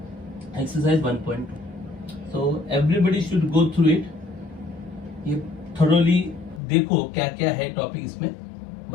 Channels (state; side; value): drops out; right; at 6.6 s